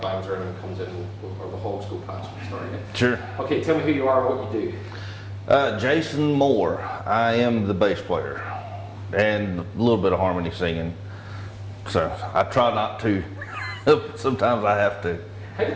bangs or anyone comes in, or the hogs go past. We start again. Sure. Okay, tell me who you are and what you do. Jason Moore. I am the bass player and a little bit of harmony singing. So I try not to. Sometimes I have to. How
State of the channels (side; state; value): both; identical; correlation 1.00